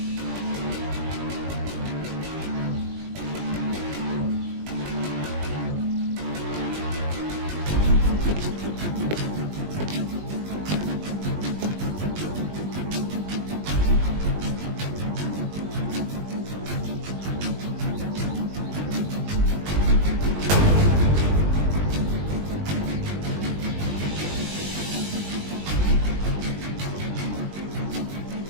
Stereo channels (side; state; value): left; late; 20 ms